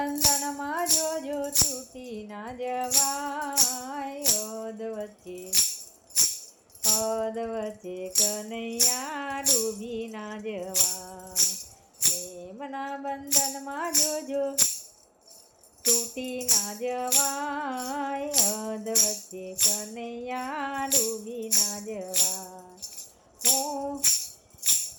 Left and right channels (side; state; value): both; identical; correlation 1.00